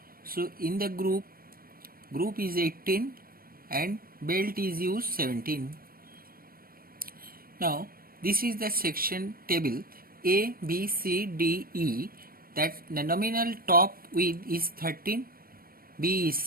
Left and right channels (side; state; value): left; late; 0.42 ms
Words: So in the group is 18 and belt is used 17. Now this is the section table A, B, C, D, E. That the nominal top width is 13, B is